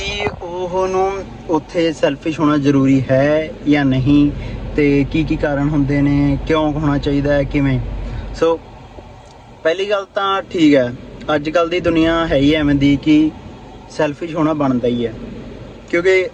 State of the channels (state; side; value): identical; both; correlation 1.00